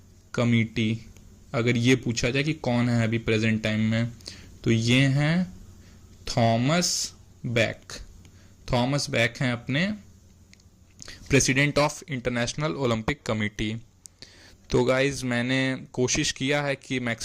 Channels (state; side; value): identical; both; correlation 1.00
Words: committee, अगर ये पूछा जाए कि कौन है अभी प्रेजेंट टाइम में, तो ये हैं थॉमस बैक हैं अपने president of international Olympic committee. तो गाइज मैंने कोशिश किया है कि